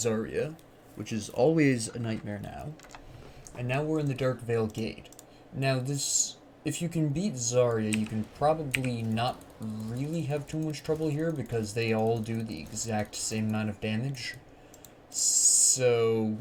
which is always a nightmare now, and now we're in the Darkvale Gate. Now if you can beat Zarya, you can probably not really have too much trouble here because they all do the exact same amount of damage. So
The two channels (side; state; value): both; identical; correlation 1.00